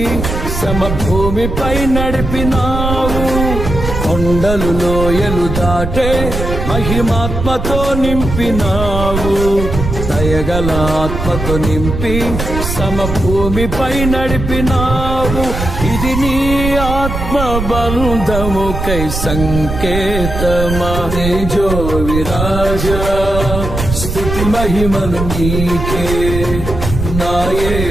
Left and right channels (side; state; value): right; noise; rumble, 4 dB below the sound